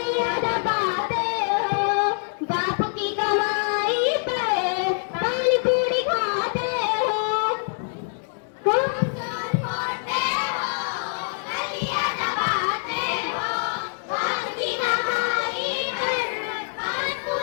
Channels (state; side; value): silent; right; 62 dB below the other